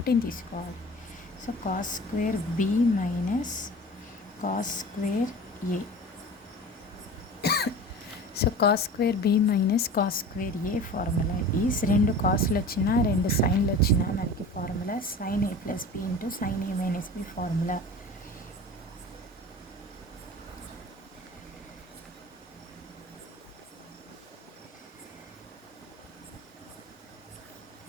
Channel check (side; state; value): both; normal; correlation 0.37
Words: తీసుకోవాలి. So cos square B minus cos square A. So cos square B minus cos square A formula is, రెండు కాస్లు వచ్చినా రెండు సైన్లు వచ్చినా మనకి formula sin A plus B into sin A minus B formula.